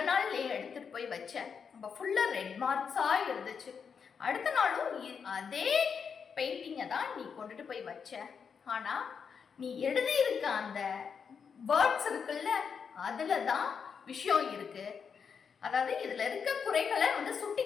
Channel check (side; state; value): right; quieter; 6.4 dB